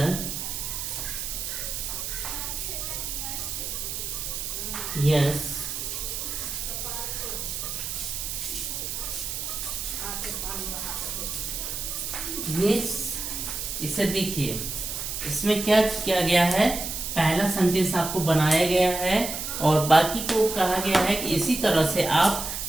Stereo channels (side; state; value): right; noise; hiss, 4 dB below the sound